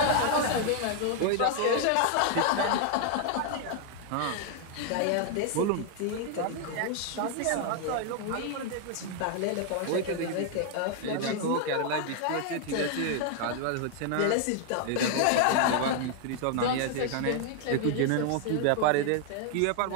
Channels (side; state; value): both; different; correlation 0.00